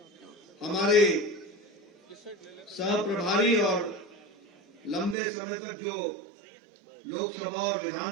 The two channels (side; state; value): left; drops out; at 5.2 s